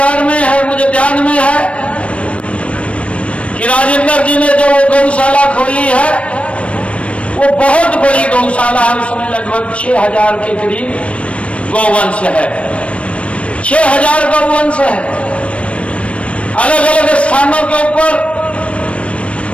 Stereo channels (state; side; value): late; right; 0.062 ms